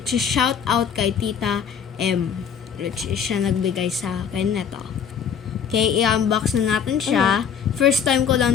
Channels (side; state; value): right; quieter; 7.5 dB